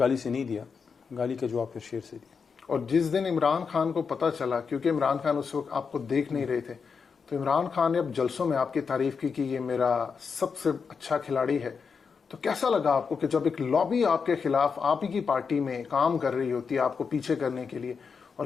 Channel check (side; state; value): right; quieter; 5.7 dB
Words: سے نہیں دیا، گالی کا جواب پھر شیر سے دیا. اور جس دن عمران خان کو پتہ چلا، کیونکہ عمران خان اس وقت آپ کو دیکھ نہیں رہے تھے، تو عمران خان نے اب جلسوں میں آپ کی تعریف کی کہ یہ میرا سب سے اچھا کھلاڑی ہے، تو کیسا لگا آپ کو کہ جب ایک لابی آپ کے خلاف آپ ہی کی پارٹی میں کام کر رہی ہوتی ہے آپ کو پیچھے کرنے کے لیے، اور